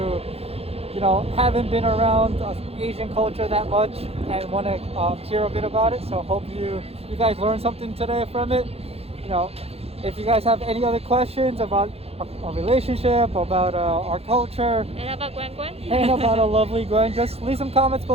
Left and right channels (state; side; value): late; left; 0.29 ms